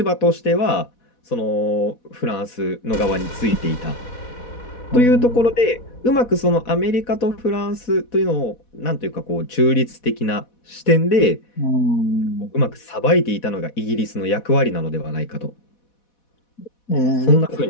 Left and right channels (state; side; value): late; right; 4.1 ms